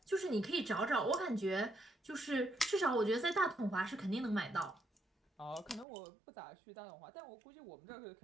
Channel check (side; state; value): left; drops out; at 5.9 s